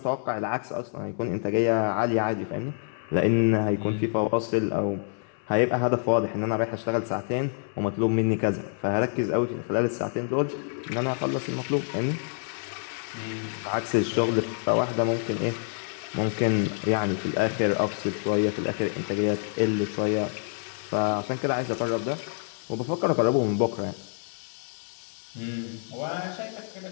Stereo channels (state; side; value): silent; right; digital silence